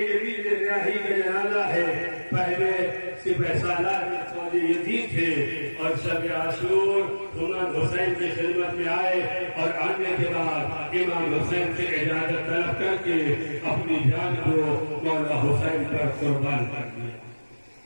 ریاحی کا جنازہ ہے۔ پہلے سپہ سالار فوج یزید تھے اور شب عاشور امام حسین کی خدمت میں آئے، اور آنے کے بعد امام حسین سے اجازت طلب کر کے اپنی جان کو مولا حسین پر قربان کر دیا۔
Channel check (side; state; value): both; inverted; correlation -1.00